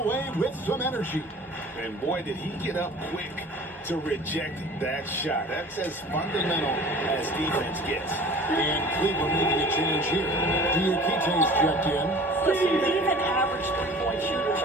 away with some energy. And boy, did he get up quick to reject that shot. That's as fundamental as defense gets. And Cleveland making a change here. Diakite's checked in. Listen, even average three-point shooters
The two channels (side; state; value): both; normal; correlation 0.44